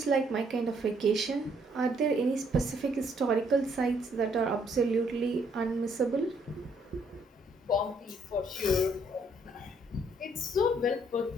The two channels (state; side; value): normal; both; correlation 0.68